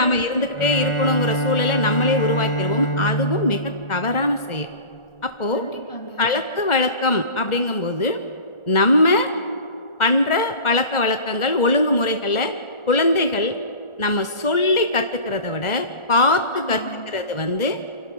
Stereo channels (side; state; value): right; late; 1.4 ms